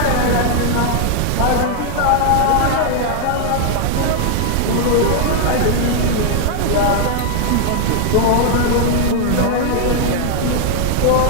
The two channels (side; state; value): both; different; correlation 0.00